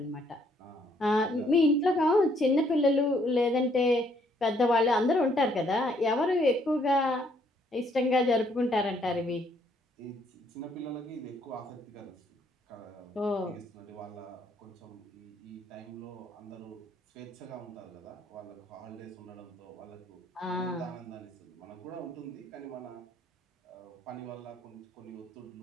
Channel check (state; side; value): normal; both; correlation 0.68